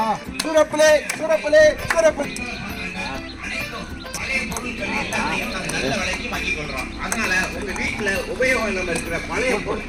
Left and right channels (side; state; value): both; identical; correlation 1.00